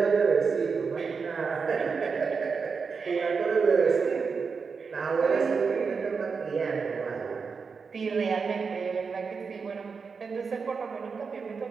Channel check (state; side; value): quieter; left; 5.3 dB